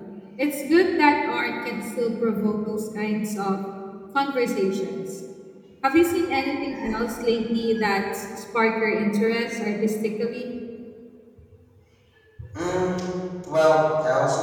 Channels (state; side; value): identical; both; correlation 1.00